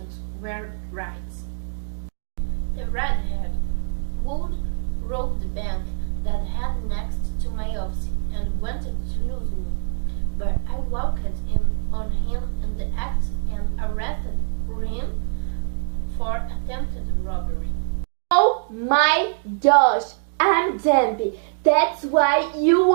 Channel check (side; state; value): left; silent; digital silence